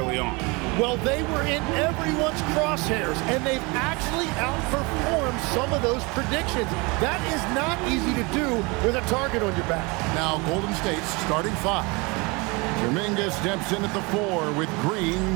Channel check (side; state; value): left; quieter; 27.2 dB